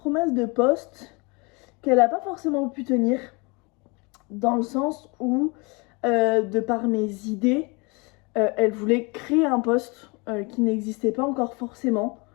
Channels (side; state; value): right; quieter; 29.1 dB